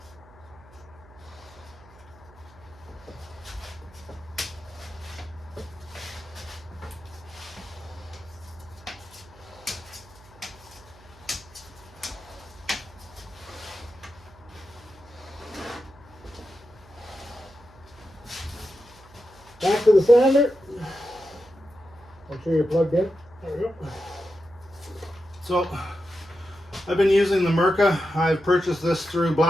Back to the sander. Make sure you're plugged in. There we go. So I've been using the Mirka. I've purchased this through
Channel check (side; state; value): right; noise; hum, 24 dB below the sound